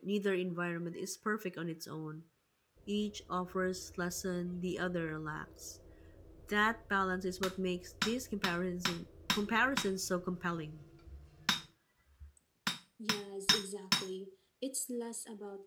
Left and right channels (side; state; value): both; identical; correlation 1.00